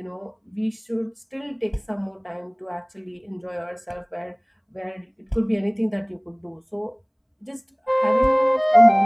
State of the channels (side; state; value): both; identical; correlation 1.00